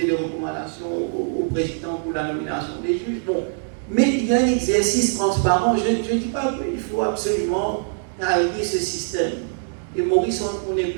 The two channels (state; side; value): silent; left; digital silence